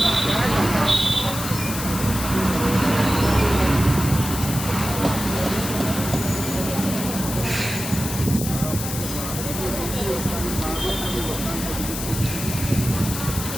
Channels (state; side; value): noise; left; hiss, 6 dB below the sound